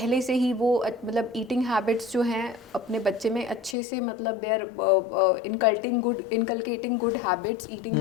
से ही वो मतलब ईटिंग हैबिट्स जो हैं अपने बच्चे में अच्छे से, मतलब they are inculcating good habits, eating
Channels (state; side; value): drops out; right; at 3.8 s